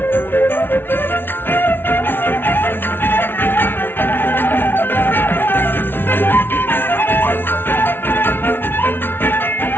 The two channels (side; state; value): right; late; 0.10 ms